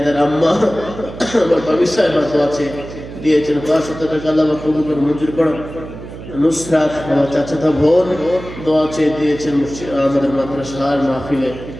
আম্মা আমার বাবি সাহেব দোয়া চেয়ে দিয়েছেন 500 টাকা আল্লাহ কবুল করে মঞ্জুর করুন নুসরাত আমার চাচাতো বোন দোয়া চেয়ে দিয়েছেন আমাদের মাদ্রাসার মাহফিলে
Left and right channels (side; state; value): right; noise; hum, 13 dB below the sound